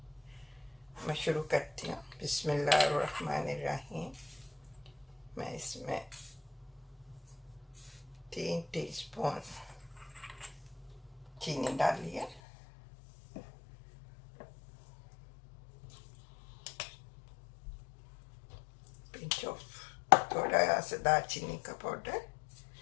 मैं शुरू करती हूँ। बिस्मिल्लाहिर्रहमानिर्रहीम। मैं इसमें 3 टीस्पून चीनी डाली है, पिंच ऑफ थोड़ा सा दालचीनी का पाउडर,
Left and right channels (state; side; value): drops out; right; at 12.4 s